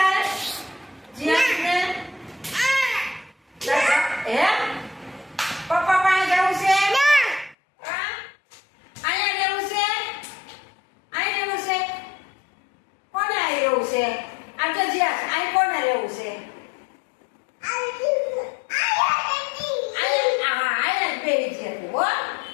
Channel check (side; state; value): right; drops out; at 7.6 s